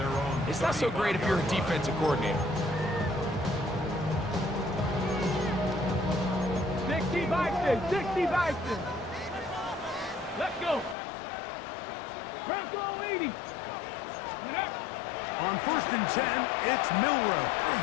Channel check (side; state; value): right; drops out; at 11.0 s